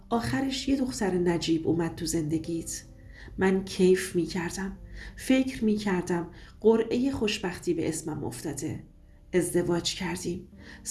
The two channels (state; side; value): identical; both; correlation 1.00